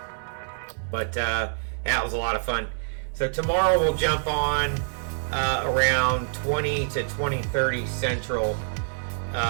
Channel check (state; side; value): silent; left; digital silence